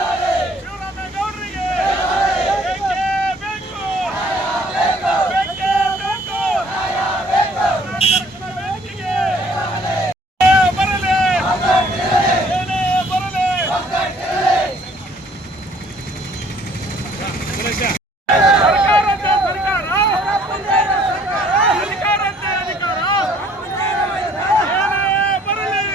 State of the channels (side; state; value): both; normal; correlation 0.59